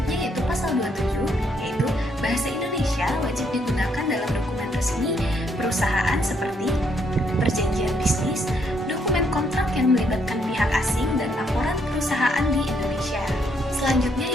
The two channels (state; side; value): normal; both; correlation 0.72